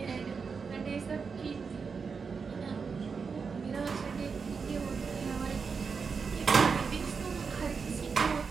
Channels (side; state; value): left; quieter; 5.4 dB